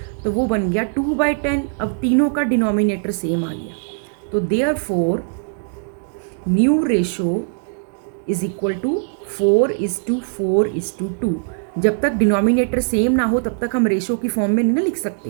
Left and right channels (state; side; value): silent; left; digital silence